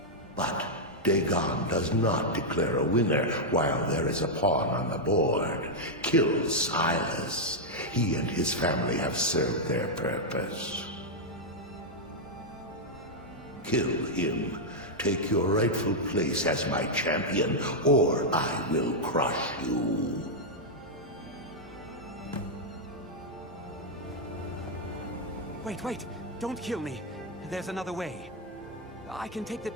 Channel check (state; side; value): normal; both; correlation -0.03